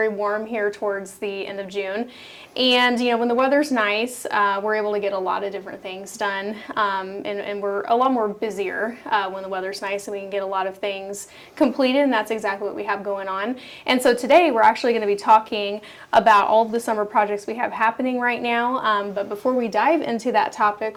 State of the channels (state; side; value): identical; both; correlation 1.00